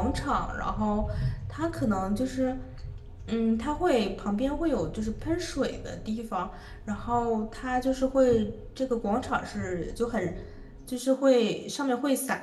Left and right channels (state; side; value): identical; both; correlation 1.00